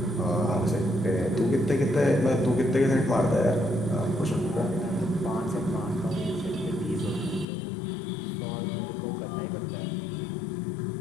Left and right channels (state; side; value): drops out; right; at 7.5 s